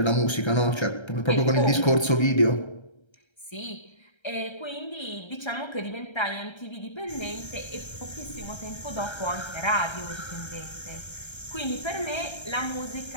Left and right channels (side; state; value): right; late; 1.3 ms